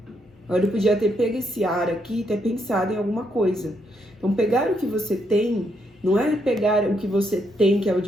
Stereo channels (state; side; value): normal; both; correlation 0.76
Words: Agora eu podia ter pego esse ar aqui e ter pensado em alguma coisa. Então pegar o que você tem Não é pegar o que você tem, que é o